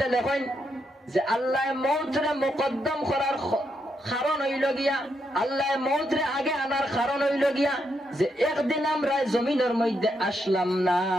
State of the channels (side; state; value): both; normal; correlation 0.80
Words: লেখেন যে আল্লাহ মওতরে মুকদ্দম করার কারণ হইল গিয়া, আল্লাহ মওতরে আগে আনার কারণ হইল গিয়া যে একদিন আমরা জমিনের মধ্যে আসলাম না,